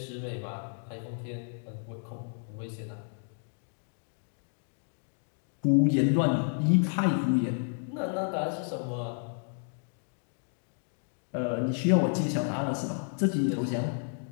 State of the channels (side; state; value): right; silent; 57 dB below the other